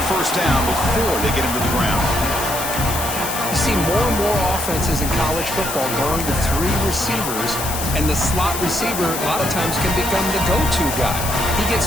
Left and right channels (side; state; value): left; noise; hiss, 5 dB below the sound